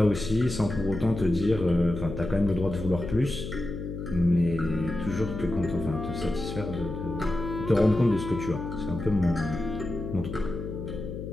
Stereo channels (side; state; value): left; noise; hum, 7 dB below the sound